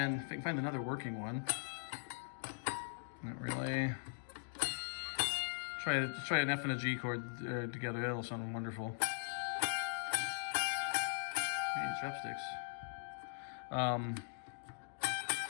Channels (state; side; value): silent; right; digital silence